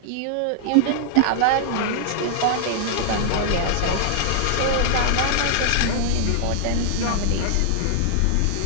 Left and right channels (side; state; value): both; different; correlation -0.01